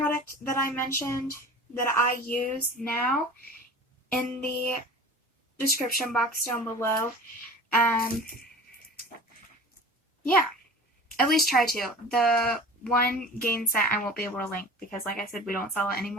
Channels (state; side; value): normal; both; correlation 0.39